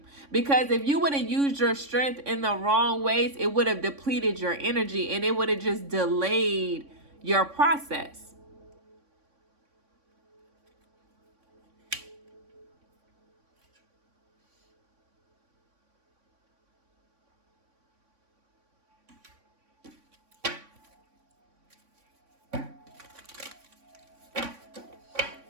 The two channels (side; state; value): left; late; 3.6 ms